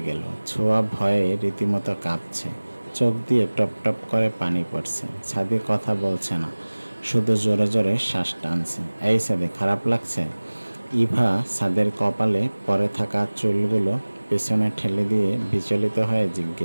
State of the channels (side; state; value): both; inverted; correlation -1.00